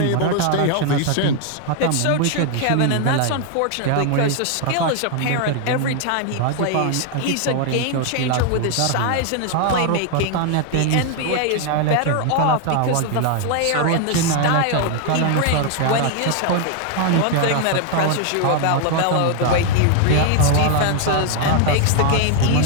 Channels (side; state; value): both; different; correlation 0.00